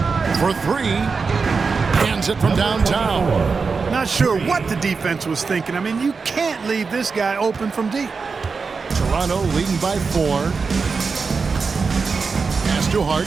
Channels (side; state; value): left; quieter; 4.9 dB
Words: For three. Hands it from downtown. Not sure what the defense was thinking. I mean, you can't leave this guy open from deep. Toronto leading by 4. Pass to Hart.